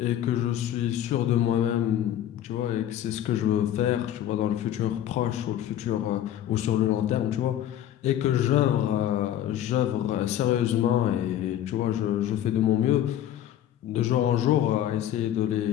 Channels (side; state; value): right; quieter; 11.5 dB